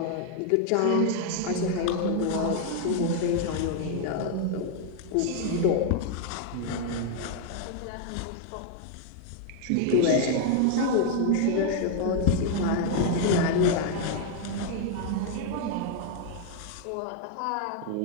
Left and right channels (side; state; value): both; different; correlation 0.00